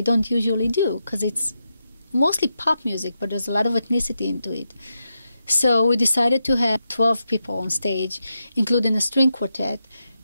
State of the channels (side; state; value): both; inverted; correlation -0.86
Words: usually do, because it's mostly pop music, but there's a lot of ethnicity into it. So we decided to have 12 people on stage, including a string quartet,